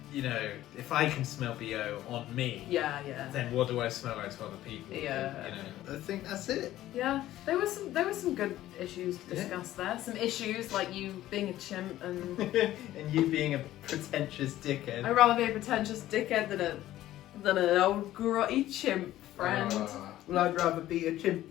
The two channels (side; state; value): right; quieter; 14.2 dB